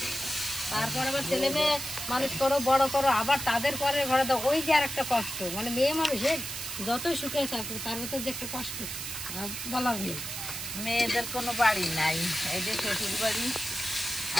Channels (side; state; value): right; noise; hiss, 6 dB below the sound